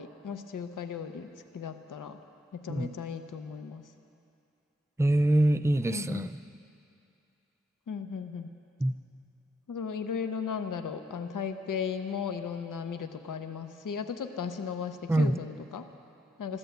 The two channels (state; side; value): normal; both; correlation 0.76